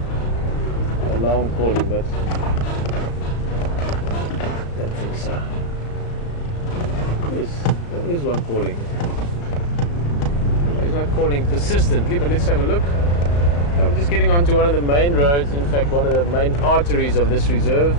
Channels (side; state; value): right; late; 35 ms